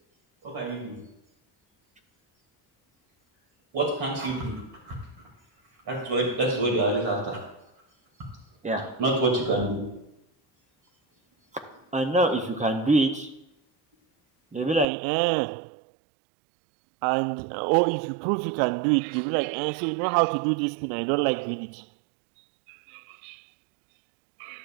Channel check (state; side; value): drops out; left; at 14.9 s